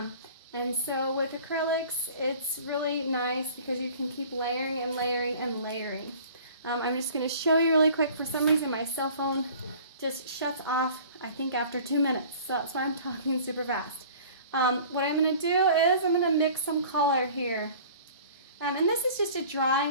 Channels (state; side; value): inverted; both; correlation -0.46